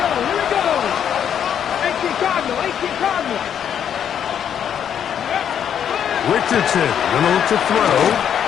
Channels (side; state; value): right; quieter; 8.9 dB